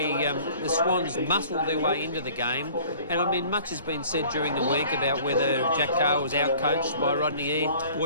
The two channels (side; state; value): both; inverted; correlation -0.50